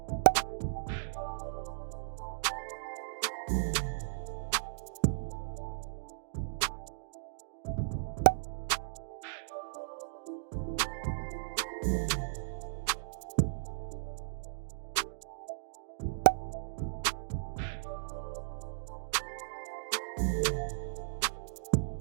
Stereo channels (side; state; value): left; silent; digital silence